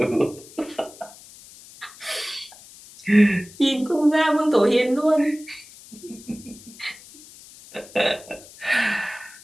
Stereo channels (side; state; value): left; noise; hiss, 20 dB below the sound